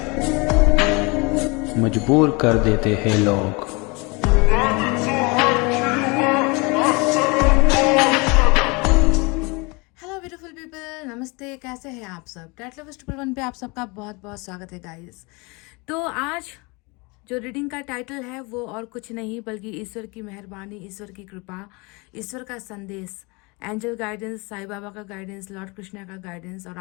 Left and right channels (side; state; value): right; quieter; 28.0 dB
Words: मजबूर कर देते हैं लोग। हेलो ब्यूटीफुल पीपल, नमस्ते। कैसे हैं आप सब? टैट लवर्स ट्रिपल वन पे आप सबका बहुत बहुत स्वागत है गाइस। तो आज जो रीडिंग का टाइटल है वो और कुछ नहीं बल्कि ईश्वर की मेहरबानी, ईश्वर की कृपा, ईश्वर का संदेश, एंजल गाइडेंस, साईं बाबा का गाइडेंस, लॉर्ड कृष्णा का गाइडेंस और